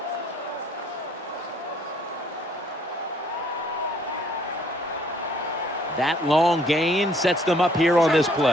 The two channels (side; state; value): both; normal; correlation 0.62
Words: That long gain sets them up here on this